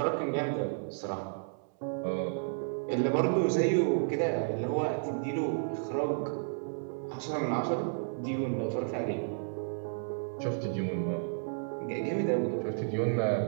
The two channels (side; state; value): left; silent; 56 dB below the other